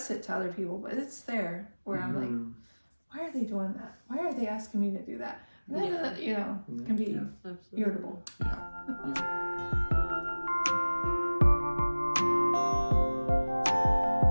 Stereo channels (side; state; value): both; inverted; correlation -1.00